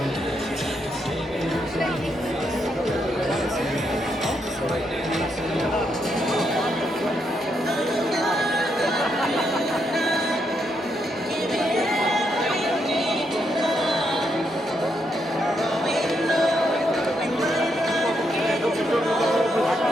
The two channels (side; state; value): both; normal; correlation 0.79